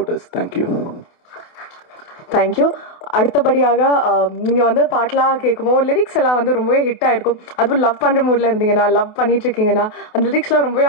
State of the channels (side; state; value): right; late; 28 ms